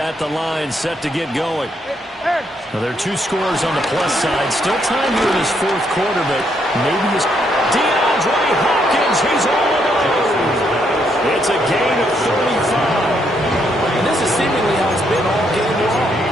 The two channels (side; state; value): both; normal; correlation 0.74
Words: the line set to get going. Now, there are 2 scores on the plus side. Still time here in this 4th quarter, but maybe his DeAndre Hopkins, he's all alone. It's a gain of 35. And this is seemingly how it's been all game